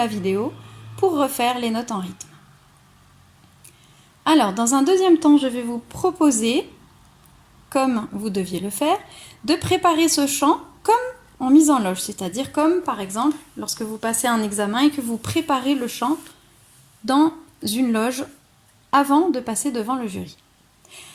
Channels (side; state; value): both; identical; correlation 1.00